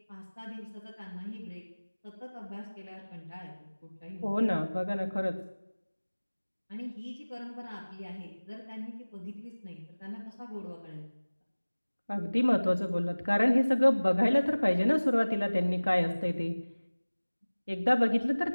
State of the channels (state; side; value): inverted; both; correlation -1.00